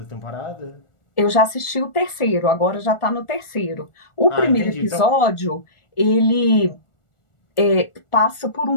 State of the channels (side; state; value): right; late; 1.4 ms